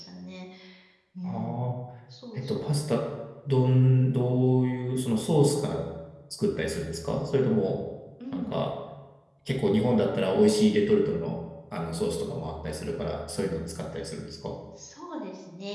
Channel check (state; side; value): identical; both; correlation 1.00